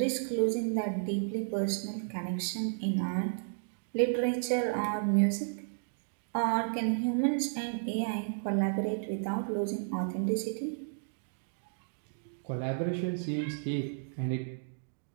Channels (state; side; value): silent; left; digital silence